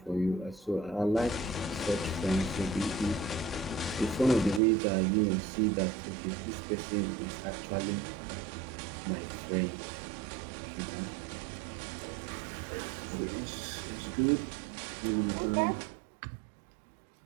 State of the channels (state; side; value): drops out; left; at 4.6 s